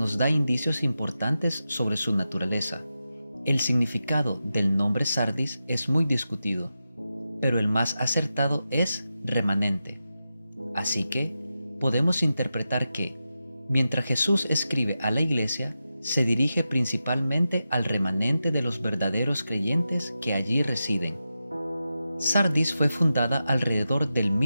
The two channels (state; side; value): inverted; both; correlation -0.91